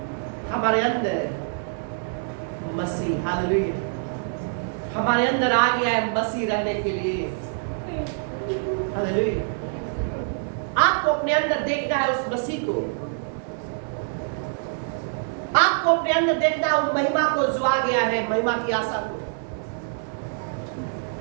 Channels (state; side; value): silent; left; 62 dB below the other